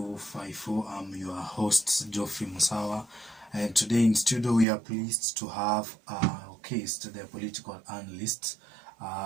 I'm your host, Geoffrey Musawa. And today in studio, we are pleased to have Case, the political analyst.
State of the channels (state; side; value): drops out; left; at 4.7 s